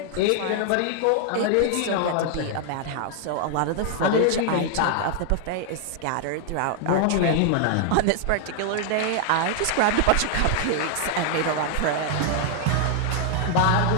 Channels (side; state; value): both; different; correlation 0.00